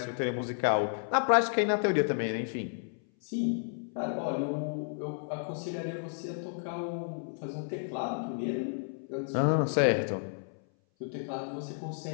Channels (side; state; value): right; silent; 56 dB below the other